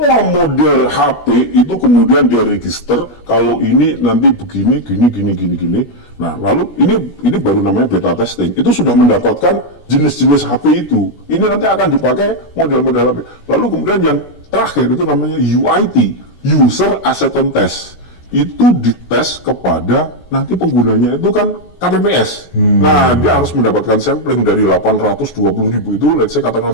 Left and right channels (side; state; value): right; late; 17 ms